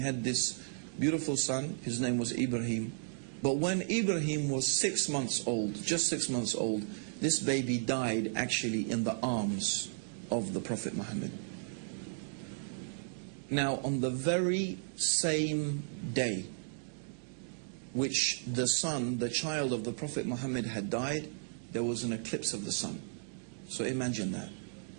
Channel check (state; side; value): silent; left; digital silence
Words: this beautiful son. His name was Ibrahim. But when Ibrahim was 6 months old, just 6 months old, this baby died actually in the arms of the Prophet Muhammad. Now, on the very same day which the son, the child of the Prophet Muhammad had died, there was an eclipse of the sun. So imagine that.